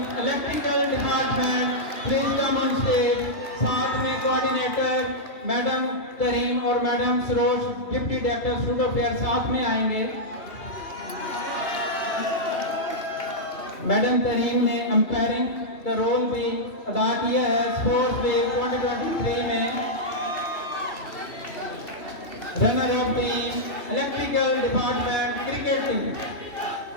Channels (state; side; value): late; right; 2.8 ms